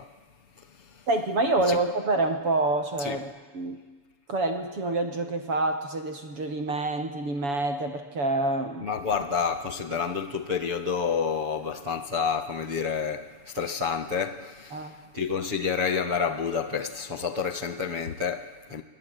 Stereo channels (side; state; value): left; late; 7.1 ms